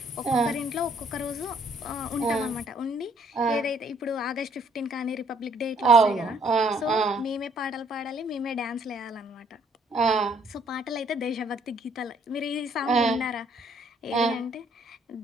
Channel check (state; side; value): normal; both; correlation 0.64